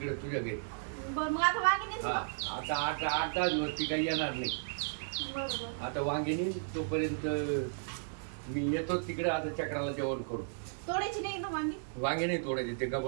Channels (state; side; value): silent; left; digital silence